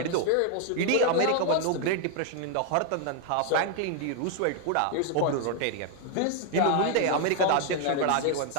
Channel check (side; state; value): both; different; correlation 0.00